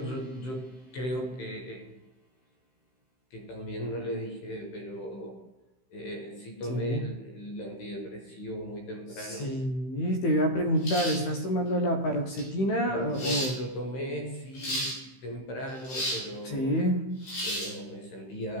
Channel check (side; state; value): right; late; 15 ms